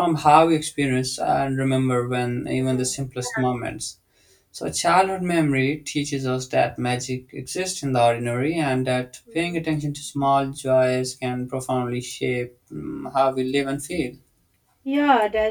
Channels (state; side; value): identical; both; correlation 1.00